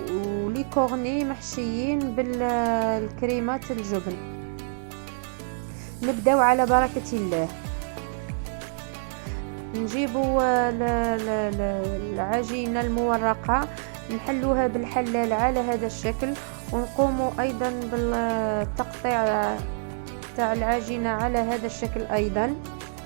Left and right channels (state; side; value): silent; left; digital silence